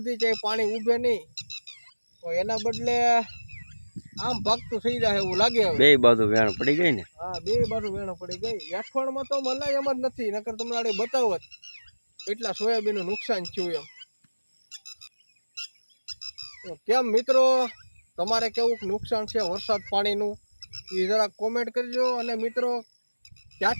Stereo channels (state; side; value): inverted; both; correlation -1.00